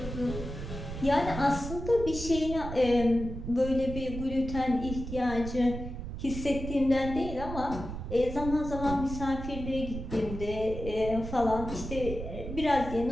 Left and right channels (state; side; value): noise; right; rumble, 8 dB below the sound